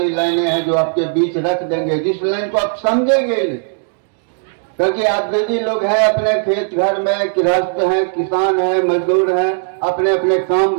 लाइनें हैं जो आपके बीच रख देंगे, जिस लाइन को आप समझेंगे नहीं, क्योंकि आप बेदी लोग हैं, अपने खेत घर में गृहस्थ हैं, किसान हैं, मजदूर हैं, अपने अपने काम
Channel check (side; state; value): left; silent; digital silence